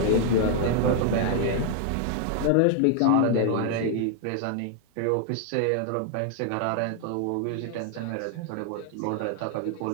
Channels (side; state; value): both; different; correlation 0.00